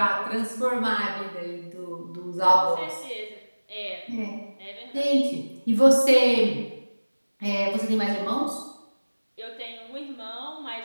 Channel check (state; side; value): inverted; both; correlation -1.00